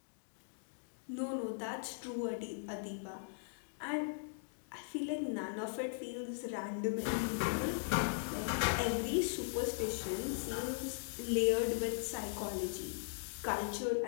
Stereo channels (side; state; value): right; silent; digital silence